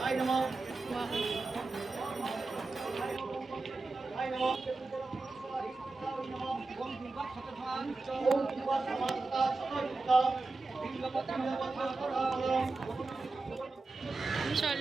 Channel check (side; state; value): left; quieter; 3.6 dB